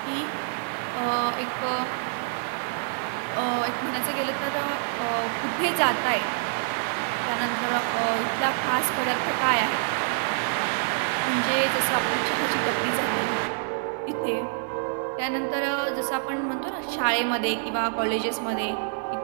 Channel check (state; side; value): silent; left; digital silence